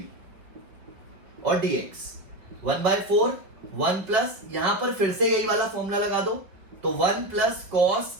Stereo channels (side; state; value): left; late; 5.3 ms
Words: और dx 1/4 1 प्लस, यहां पर फिर से यही वाला फॉर्मूला लगा दो, तो 1 प्लस cos